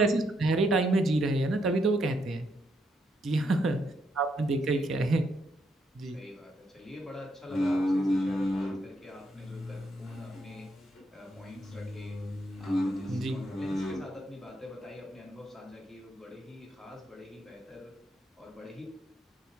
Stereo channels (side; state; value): both; normal; correlation 0.77